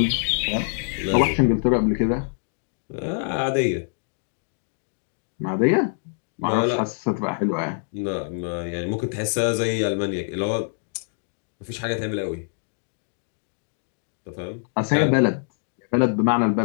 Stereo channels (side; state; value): right; silent; digital silence